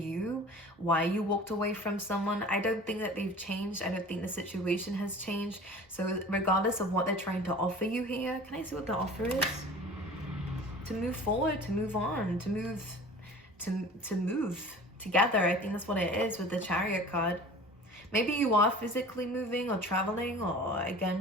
why you walked away from someone. I don't think that they've changed. I don't think the situation has changed. So regardless of what they're trying to offer you here, can I see what the offer is? To move forward, to move on, to move together. I think that's what it is with the Chariot card. Maybe you are physically moving or traveling, or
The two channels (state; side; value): normal; both; correlation 0.42